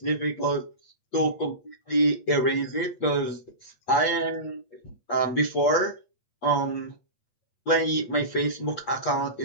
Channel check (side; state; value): right; late; 8.5 ms